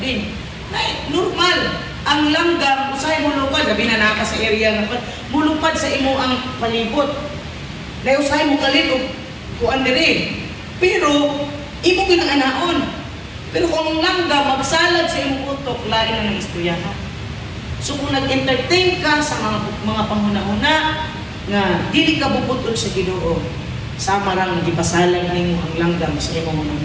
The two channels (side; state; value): both; identical; correlation 1.00